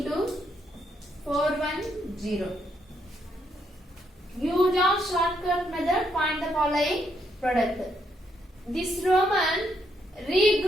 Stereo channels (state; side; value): normal; both; correlation 0.76